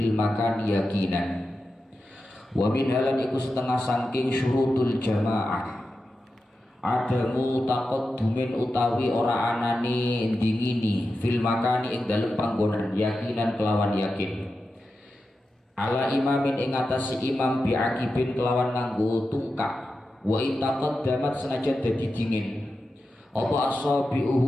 المكان يقينا. ومنها lan iku setengah saking syurutul jamaah adamu taqaddumin utawi ora anane ndingini fil makani ing dalem panggonan yakinan kelawan yakin ala imamin ing atas imam bi'akibin kelawan nganggo tungkak wa itaqaddamat senajan dadi dingin apa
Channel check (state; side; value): normal; both; correlation 0.91